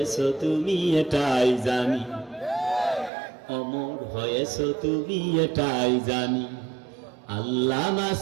তুমি এটাই জানি, অমর হয়েছ তুমি এটাই জানি। আল্লামা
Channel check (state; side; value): drops out; left; at 3.1 s